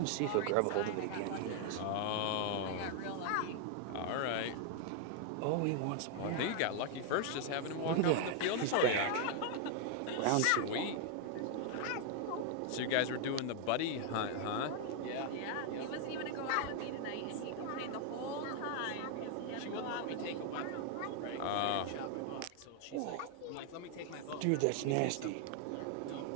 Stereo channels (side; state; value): both; different; correlation 0.00